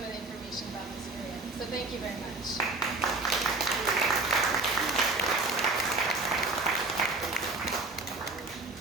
of the information about this area. So thank you very much.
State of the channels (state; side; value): quieter; left; 3.4 dB